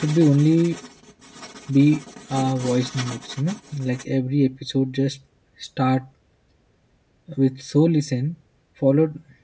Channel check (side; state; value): both; identical; correlation 1.00